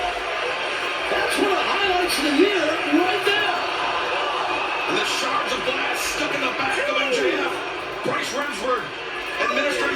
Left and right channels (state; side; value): identical; both; correlation 1.00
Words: That's one of the highlights of the year right there. And the shards of glass stuck in the back of MJF. Bryce Remsburg administering